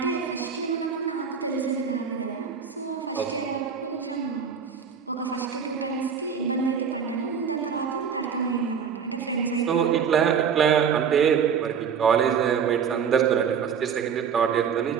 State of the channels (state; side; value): quieter; left; 7.0 dB